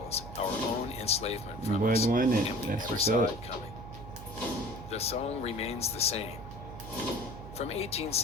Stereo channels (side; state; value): right; noise; hum, 12 dB below the sound